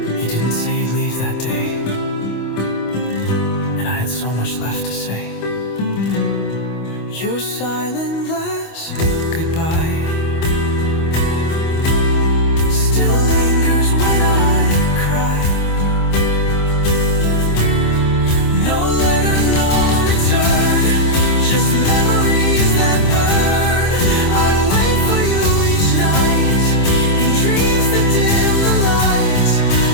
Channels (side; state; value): right; late; 25 ms